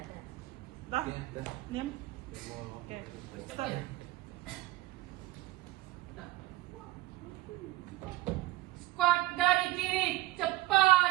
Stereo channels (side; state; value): left; quieter; 17.9 dB